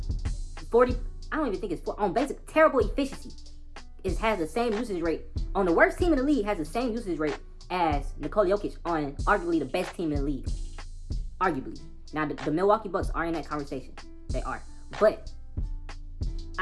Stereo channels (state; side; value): identical; both; correlation 1.00